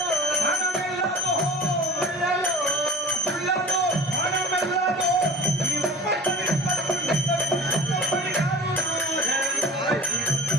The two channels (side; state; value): both; normal; correlation 0.43